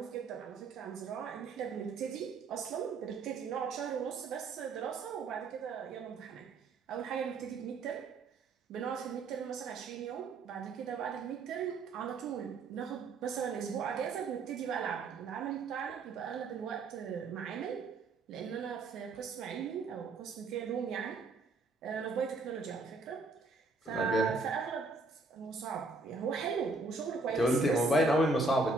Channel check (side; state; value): left; quieter; 3.4 dB